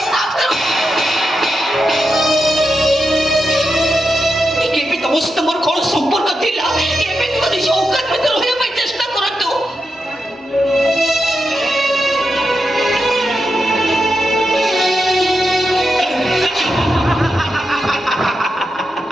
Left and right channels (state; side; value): normal; both; correlation 0.87